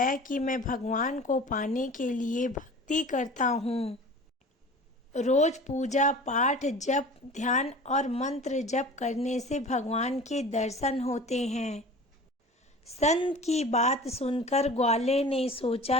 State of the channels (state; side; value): normal; both; correlation 0.40